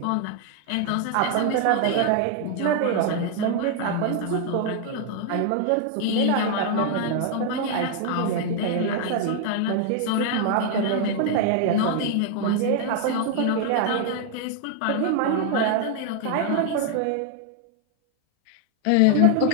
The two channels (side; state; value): both; different; correlation 0.00